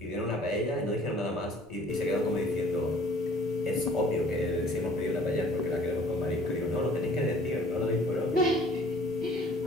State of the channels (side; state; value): left; noise; rumble, 27 dB below the sound